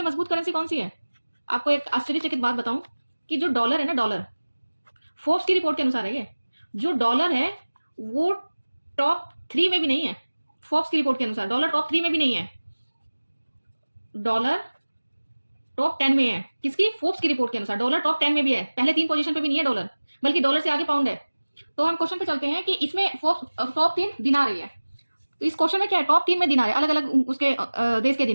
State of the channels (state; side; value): inverted; both; correlation -1.00